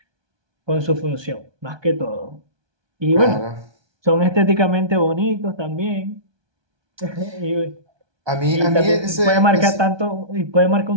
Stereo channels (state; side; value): late; left; 1.2 ms